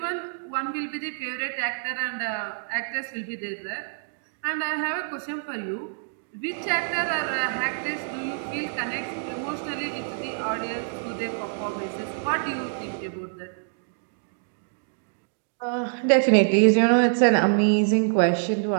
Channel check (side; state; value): left; silent; digital silence